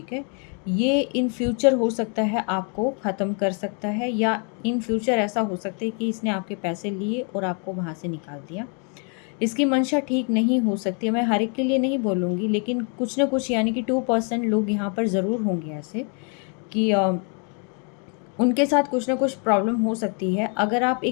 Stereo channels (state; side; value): quieter; right; 38.9 dB